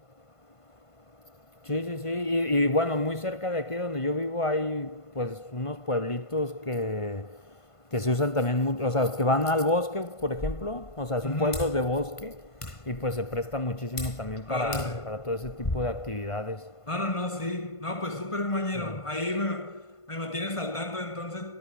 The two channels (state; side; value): late; right; 1.5 ms